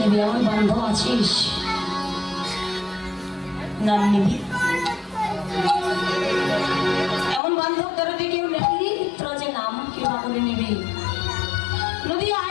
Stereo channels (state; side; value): drops out; right; at 7.4 s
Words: আমার বান্ধব আছিস, নাম নিবি। এমন বান্ধব তোরা যে কেউ নেবি, তোরা যে নাম কিবা করে নিবি। নদী